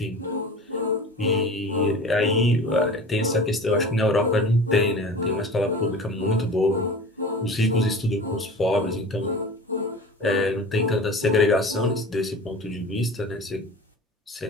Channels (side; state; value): both; normal; correlation 0.37